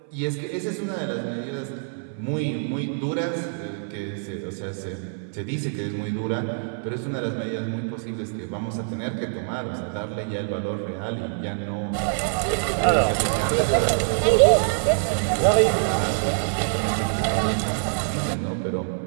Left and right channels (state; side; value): silent; left; 57 dB below the other